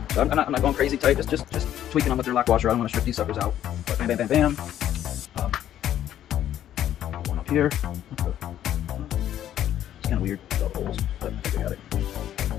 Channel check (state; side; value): quieter; right; 11.4 dB